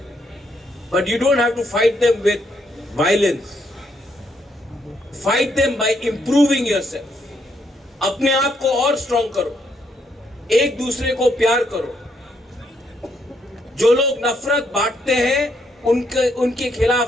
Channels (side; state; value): both; normal; correlation 0.74